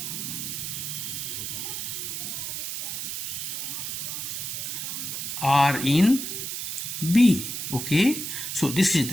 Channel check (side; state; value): right; noise; hiss, 4 dB below the sound